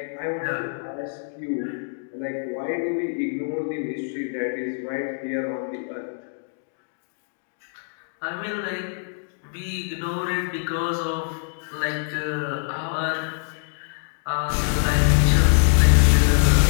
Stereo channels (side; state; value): right; silent; digital silence